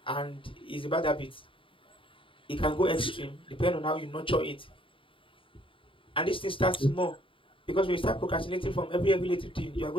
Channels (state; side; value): late; right; 0.25 ms